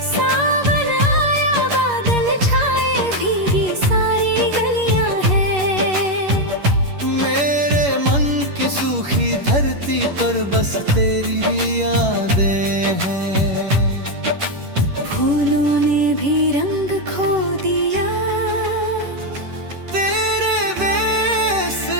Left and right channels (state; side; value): late; left; 11 ms